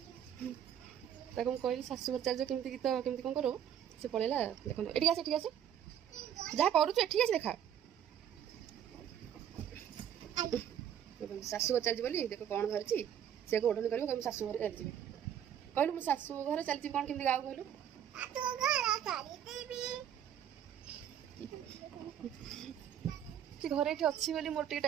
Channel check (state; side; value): quieter; left; 9.7 dB